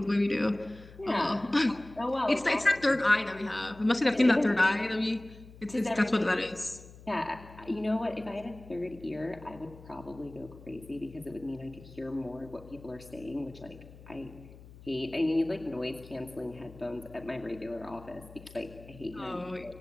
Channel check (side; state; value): left; noise; hum, 19 dB below the sound